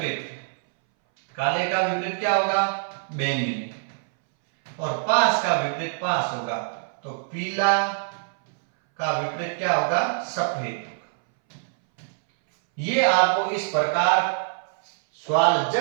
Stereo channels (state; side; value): silent; left; 61 dB below the other